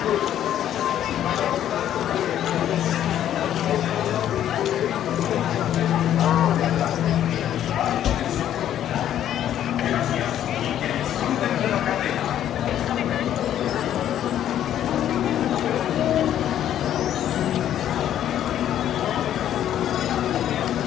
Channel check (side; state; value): right; quieter; 11.0 dB